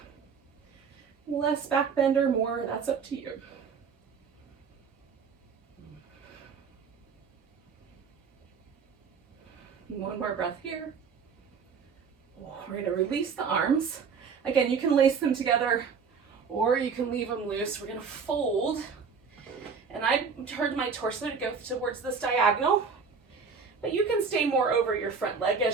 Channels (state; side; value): quieter; left; 5.7 dB